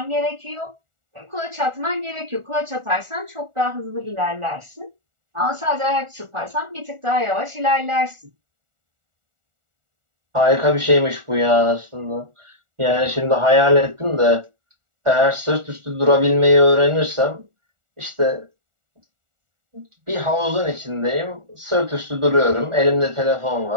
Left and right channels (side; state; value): left; late; 1.4 ms